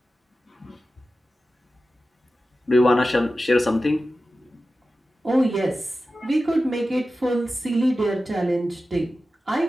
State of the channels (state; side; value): normal; both; correlation 0.94